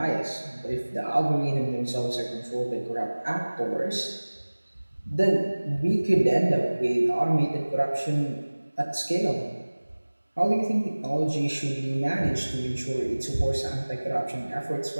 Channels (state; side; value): inverted; both; correlation -1.00